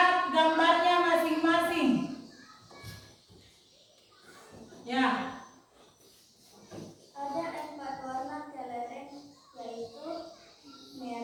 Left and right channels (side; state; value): both; identical; correlation 1.00